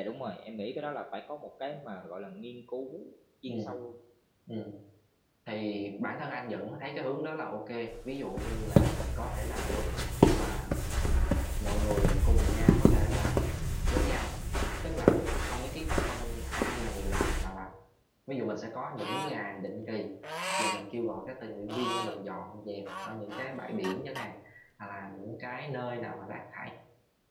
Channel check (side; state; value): both; identical; correlation 1.00